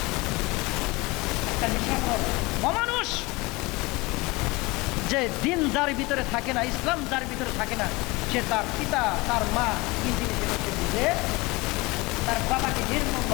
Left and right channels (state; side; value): quieter; right; 23.7 dB